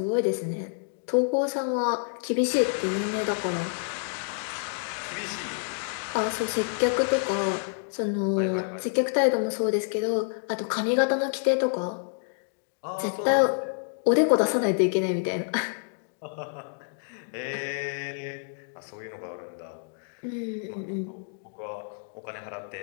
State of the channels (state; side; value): silent; right; digital silence